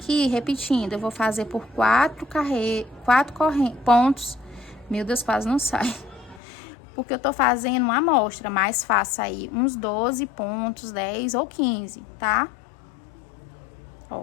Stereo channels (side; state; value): right; drops out; at 6.4 s